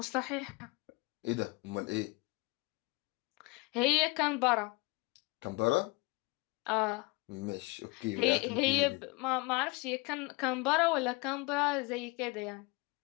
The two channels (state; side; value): quieter; right; 26.1 dB